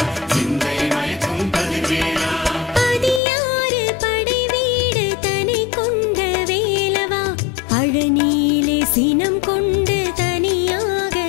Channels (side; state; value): right; drops out; at 3.2 s